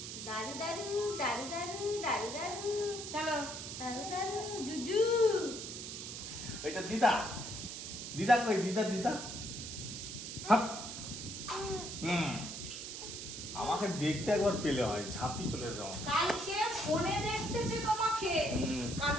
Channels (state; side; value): noise; right; hiss, 7 dB below the sound